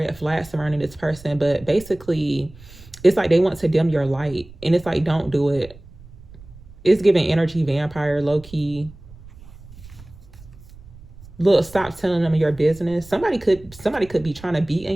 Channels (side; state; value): right; noise; rumble, 20 dB below the sound